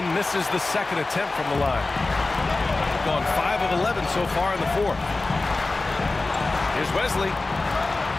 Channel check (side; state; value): right; quieter; 3.3 dB